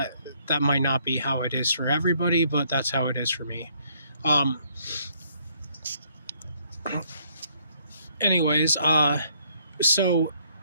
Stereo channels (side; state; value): both; inverted; correlation -0.68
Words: that might not be how it is for everybody, but that's how it is for me. Anyways, so